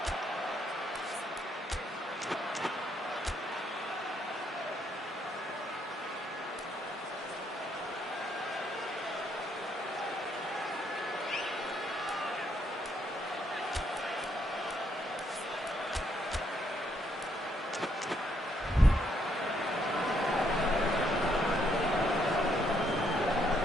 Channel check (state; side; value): normal; both; correlation 0.73